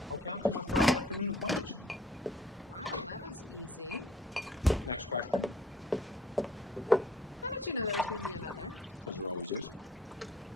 I'll cancel my Friday afternoon appointments. Wow, that was easy. Next question. How did you know there was going to be another? Because there always is.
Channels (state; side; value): normal; both; correlation 0.55